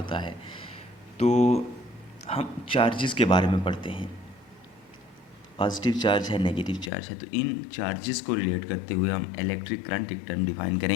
है। तो हम चार्जेस के बारे में पढ़ते हैं, पॉजिटिव चार्ज है, नेगेटिव चार्ज है। तो इन चार्जेस को रिलेट करते हुए हम इलेक्ट्रिक करंट एक टर्म डिफाइन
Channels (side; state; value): right; drops out; at 6.9 s